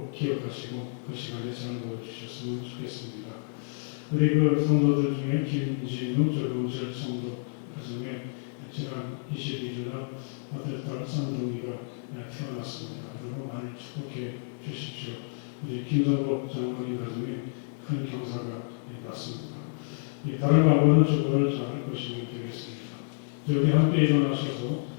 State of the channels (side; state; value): right; silent; digital silence